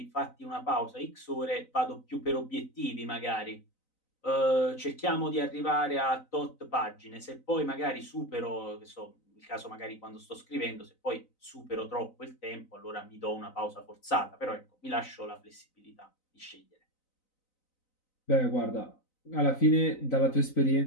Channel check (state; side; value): late; right; 3.9 ms